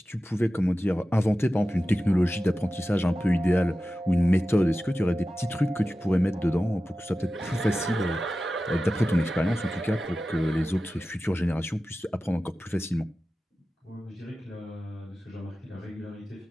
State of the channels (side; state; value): both; normal; correlation 0.94